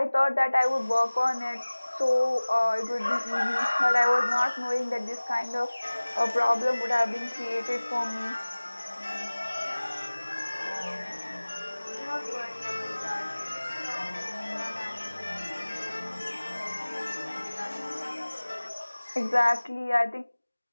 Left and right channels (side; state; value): both; inverted; correlation -1.00